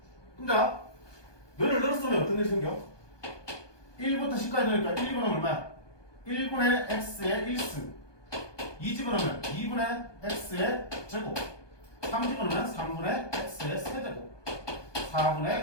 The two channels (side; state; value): right; late; 1.2 ms